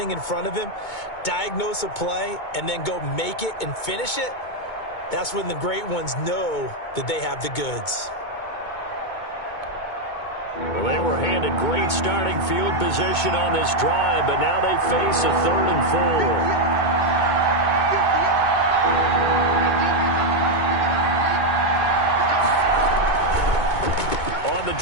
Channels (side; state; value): right; late; 2.2 ms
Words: in front of him, diagnose a play, and then go make it and finish it, that's when the great ones know that they have the goods. Well, they were handed great starting field position on this drive, but now they face a 3rd and 4. On the